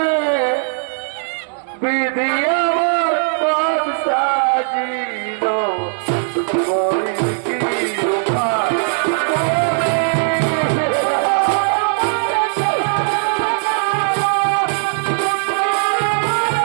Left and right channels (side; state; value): left; silent; 67 dB below the other